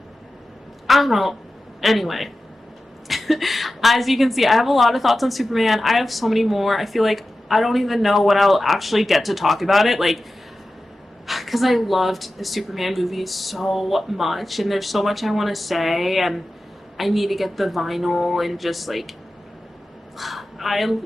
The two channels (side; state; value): both; normal; correlation 0.94